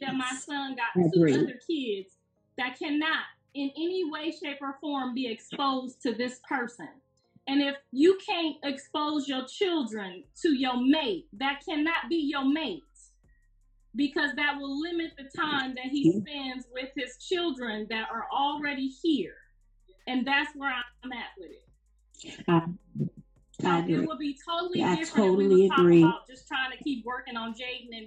that my son got two other kids that cannot in any way, shape, or form be exposed to this person. And if you can't expose your children to your mate, that cannot be your mate, because that will limit the time that he spends with his children that are already here. And that's where I'm at with it. I agree. It would be totally I different totally if we were agree. talking about just trying to keep working on Jayden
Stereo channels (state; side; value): identical; both; correlation 1.00